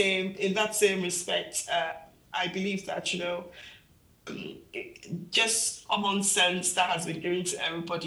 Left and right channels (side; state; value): both; identical; correlation 1.00